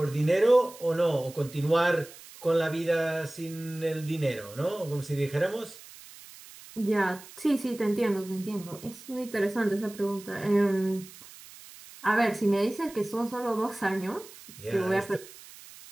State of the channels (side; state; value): right; noise; hiss, 19 dB below the sound